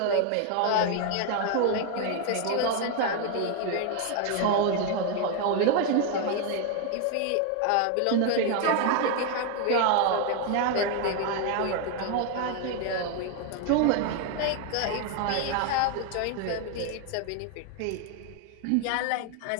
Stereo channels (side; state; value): both; different; correlation 0.00